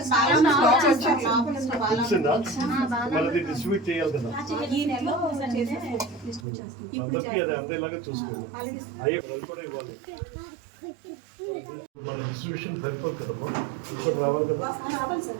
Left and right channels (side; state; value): left; drops out; at 6.5 s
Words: మళ్ళీ డిస్ట్రిబ్యూట్ చేయాలి కదా, అందరికీ అది అందేలాగా చూసుకోవాలి. అయ్యే కూడా ఇవ్వాలి. మన డిస్ట్రిబ్యూషన్ సరిపోదు కదమ్మా, ఇప్పుడు రావాలి కదా,